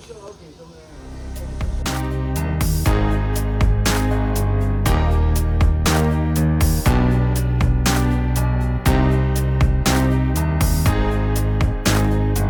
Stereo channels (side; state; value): both; identical; correlation 1.00